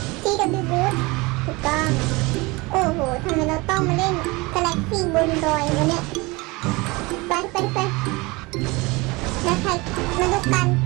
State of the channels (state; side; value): quieter; left; 24.2 dB